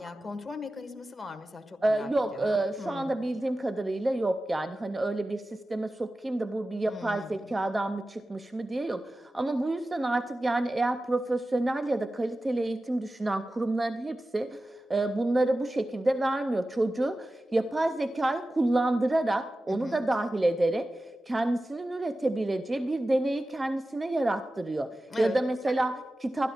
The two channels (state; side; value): normal; both; correlation 0.94